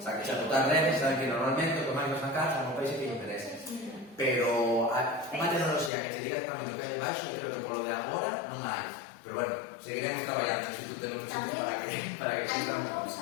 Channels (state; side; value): drops out; right; at 5.9 s